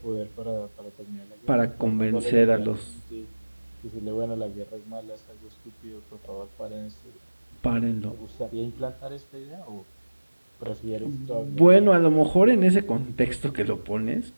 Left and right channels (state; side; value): inverted; both; correlation -1.00